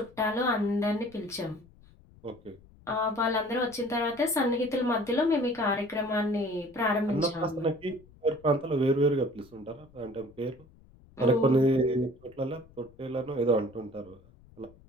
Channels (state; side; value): noise; left; rumble, 26 dB below the sound